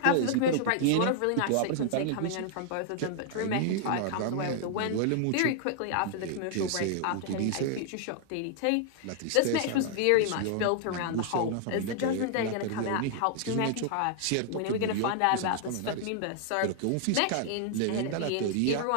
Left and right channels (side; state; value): both; different; correlation -0.01